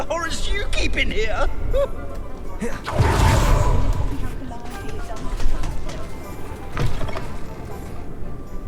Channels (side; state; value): both; identical; correlation 1.00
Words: horrors you keep in here.